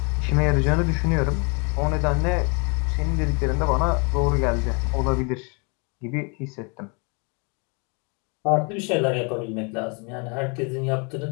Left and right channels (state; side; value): quieter; right; 34.3 dB